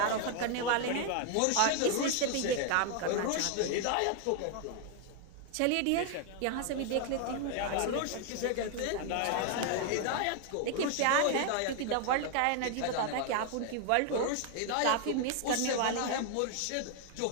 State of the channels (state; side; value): different; both; correlation 0.00